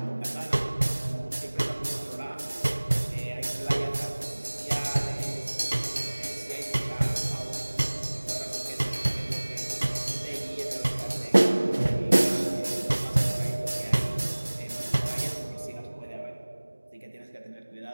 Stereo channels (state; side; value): inverted; both; correlation -1.00